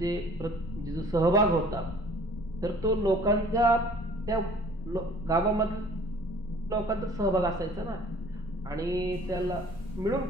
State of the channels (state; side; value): normal; both; correlation 0.51